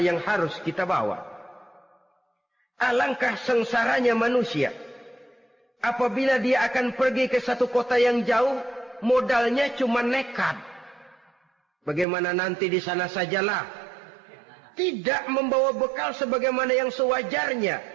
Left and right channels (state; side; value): drops out; left; at 12.1 s